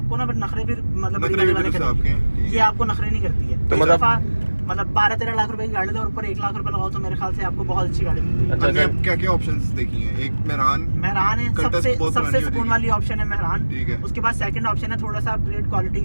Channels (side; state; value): both; inverted; correlation -1.00